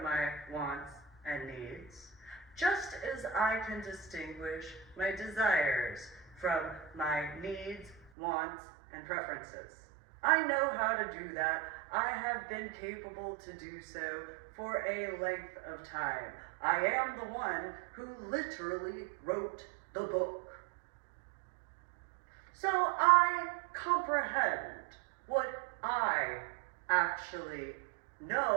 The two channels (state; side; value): drops out; left; at 8.1 s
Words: my wants and needs, just as I can distinguish my desires from my needs, wants, and preferences. I know how to do that. I have been capable to do so for a length of time. I am the one who literally wrote the book. So I comprehend what I actually